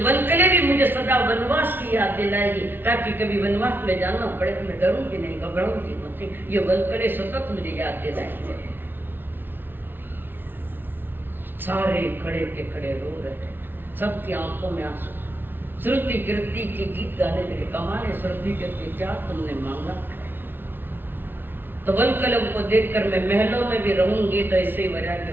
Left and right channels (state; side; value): late; left; 0.099 ms